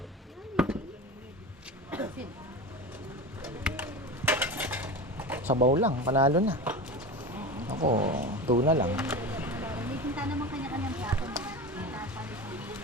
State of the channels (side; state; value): both; normal; correlation 0.28